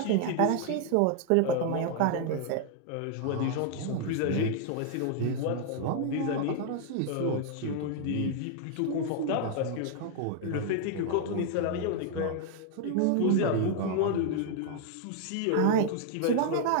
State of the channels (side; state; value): both; different; correlation 0.00